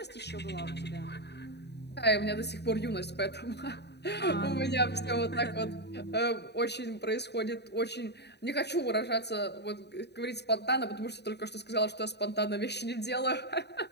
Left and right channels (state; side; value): late; right; 0.49 ms